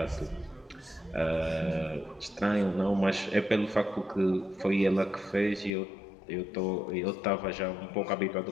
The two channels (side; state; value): right; drops out; at 5.7 s